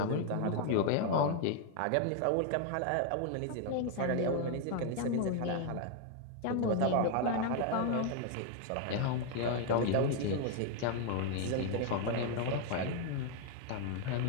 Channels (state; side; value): different; both; correlation 0.01